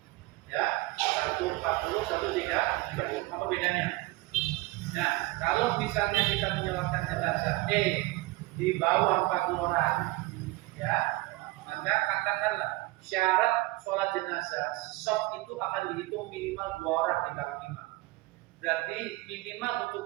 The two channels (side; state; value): left; quieter; 20.5 dB